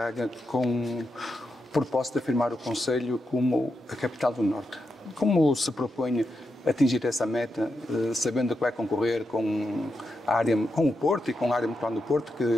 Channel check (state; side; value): normal; both; correlation 0.86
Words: com o propósito de afirmar o Concelho como a capital do Norte. Como se propõe atingir essa meta, sabendo que vai concorrer com o Porto e com a área metropolitana do Porto, que